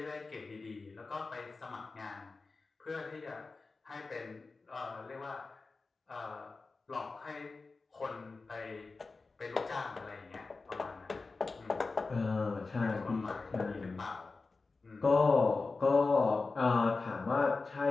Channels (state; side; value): quieter; right; 3.9 dB